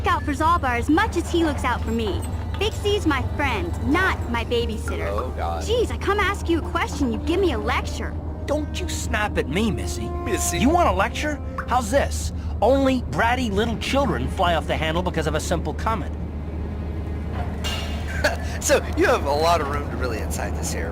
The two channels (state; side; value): identical; both; correlation 1.00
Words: out for Zalbar as much as he looks out for me. Big C's my friend, not my babysitter. Oh, God. Jeez, I come ask you a question, you give me a lecture. Don't you snap at me, Missy. Missy. You want a lecture? How's this? Only bratty little children fly off the handle because of a simple comment. So, you have a lot of room to really incite this here.